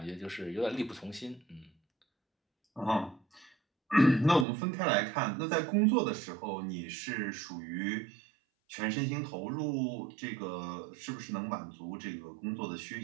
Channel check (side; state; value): left; drops out; at 4.5 s